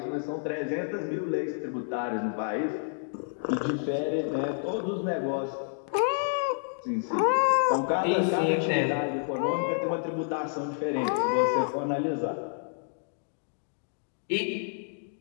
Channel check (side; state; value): right; silent; digital silence